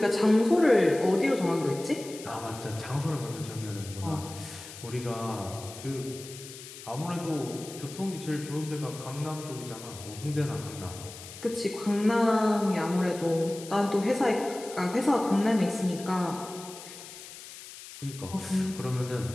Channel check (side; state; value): left; noise; hiss, 14 dB below the sound